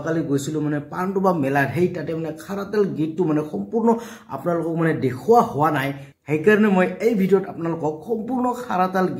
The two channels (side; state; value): both; identical; correlation 1.00